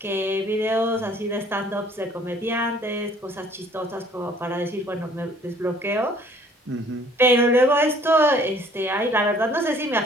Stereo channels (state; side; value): normal; both; correlation 0.57